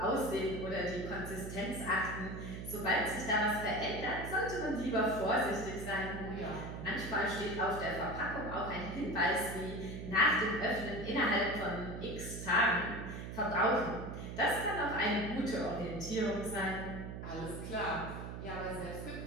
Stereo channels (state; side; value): noise; right; hum, 8 dB below the sound